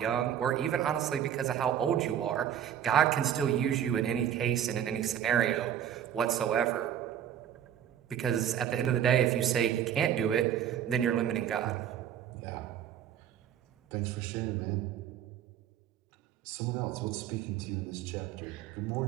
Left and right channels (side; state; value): left; quieter; 9.8 dB